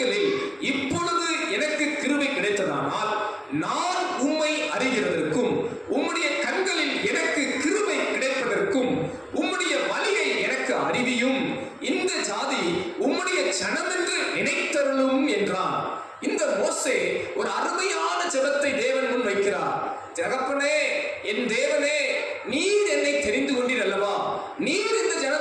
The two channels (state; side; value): identical; both; correlation 1.00